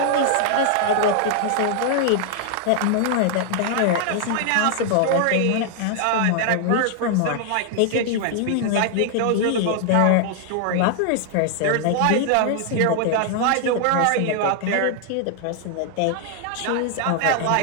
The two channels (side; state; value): both; different; correlation 0.00